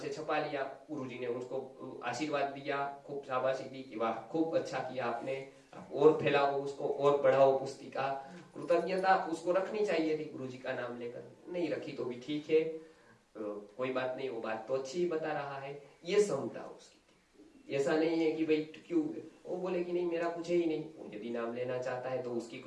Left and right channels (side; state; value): both; identical; correlation 1.00